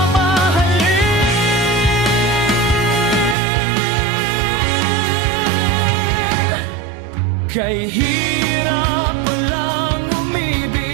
Kay hirap palang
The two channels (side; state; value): left; drops out; at 3.4 s